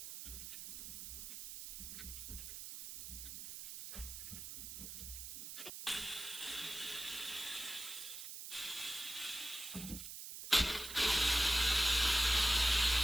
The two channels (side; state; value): right; noise; hiss, 9 dB below the sound